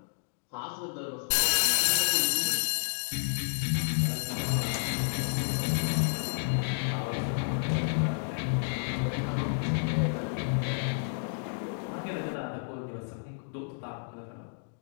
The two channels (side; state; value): right; silent; digital silence